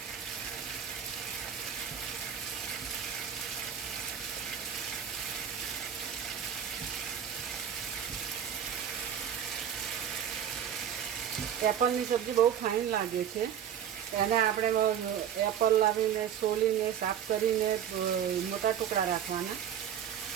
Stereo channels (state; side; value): quieter; left; 9.0 dB